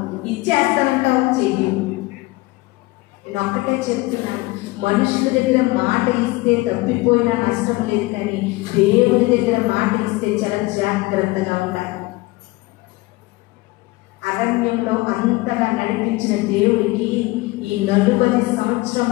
ఇచ్చేస్తానంటావు, చెయ్యి. నేను ఒక్కటే చెప్తున్నాను, మనుషుల దగ్గర మాట ఇస్తే తప్పిపోయినా నష్టం లేదు, కానీ దేవుని దగ్గర మాట ఇస్తే చాలా జాగ్రత్తగా ఉండాలి. అరణ్యంలో అంతగా నడిపించిన దేవుడికి ఈ 40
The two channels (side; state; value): right; quieter; 21.5 dB